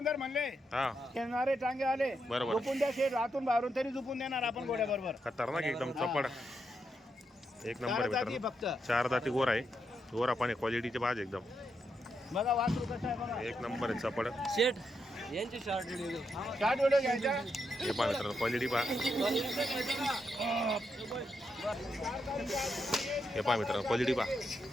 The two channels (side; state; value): both; normal; correlation 0.82